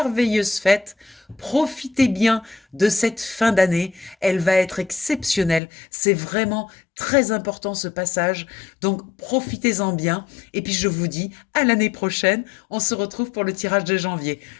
fêtes. Profitez bien de cette fin d'année, elle va être exceptionnelle. C'est vraiment très important ce passage, donc profitez-en bien. Et puis je vous dis à l'année prochaine, on se retrouve pour le tirage de janvier.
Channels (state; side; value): drops out; right; at 5.6 s